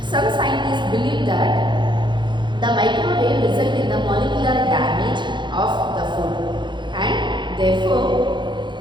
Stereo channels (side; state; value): left; late; 0.23 ms